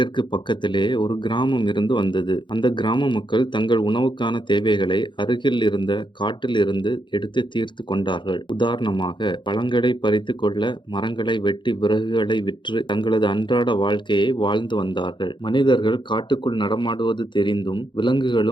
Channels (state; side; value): late; right; 0.23 ms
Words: பக்கத்திலே ஒரு கிராமம் இருந்து வந்தது. அந்த கிராம மக்கள் தங்கள் உணவுக்கான தேவைகளை அருகில் இருந்த காட்டில் இருந்து எடுத்து தீர்த்து கொண்டார்கள். உதாரணமாக, பழங்களை பறித்து கொள்ள மரங்களை வெட்டி விறகுகளை விற்று தங்களது அன்றாட வாழ்க்கையை வாழ்ந்து வந்தார்கள். மனிதர்கள் காட்டுக்குள் நடமாடுவது தெரிந்தும்